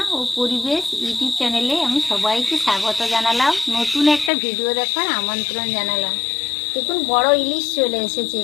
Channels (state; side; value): drops out; right; at 4.3 s